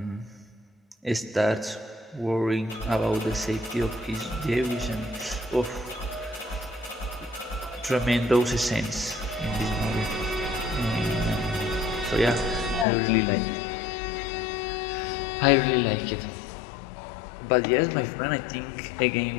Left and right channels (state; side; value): drops out; right; at 12.9 s